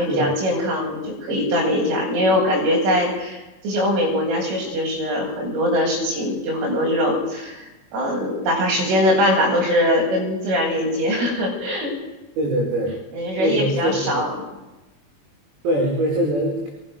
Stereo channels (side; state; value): left; late; 21 ms